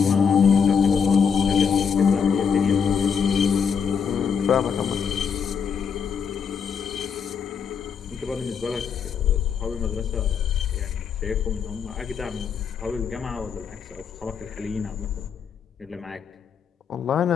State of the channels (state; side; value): quieter; right; 6.6 dB